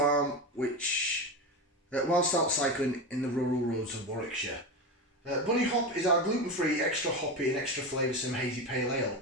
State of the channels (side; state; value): both; normal; correlation 0.20